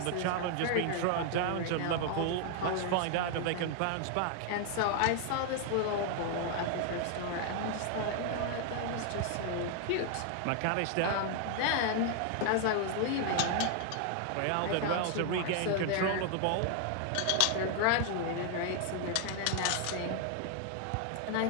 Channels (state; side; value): different; both; correlation 0.00